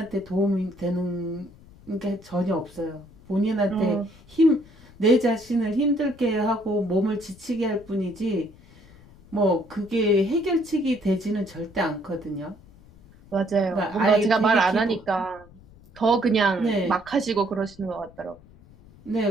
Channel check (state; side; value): noise; left; rumble, 24 dB below the sound